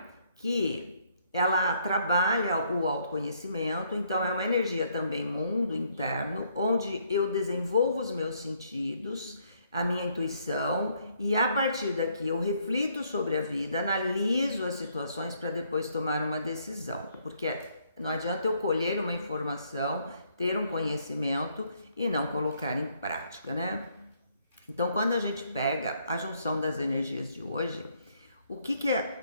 que ela trabalha o autoconhecimento, então é uma energia também mundo interno, onde eu desenvolvo os meus sentidos, a minha intuição, e a partir daqui eu reflito sobre a vida, analiso as situações para depois tomar uma decisão, porque não adianta eu colher uma informação, ter um conhecimento e não colocar em prática, né? Então, quando a gente pega a junção das energias de hoje, o que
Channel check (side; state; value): both; inverted; correlation -0.69